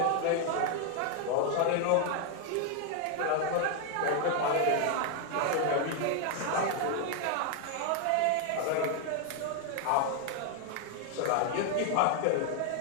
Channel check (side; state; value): both; different; correlation 0.01